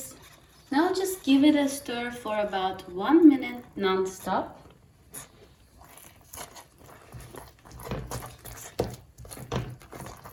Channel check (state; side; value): identical; both; correlation 1.00